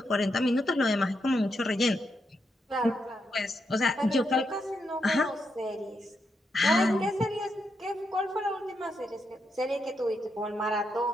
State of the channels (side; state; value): both; normal; correlation 0.82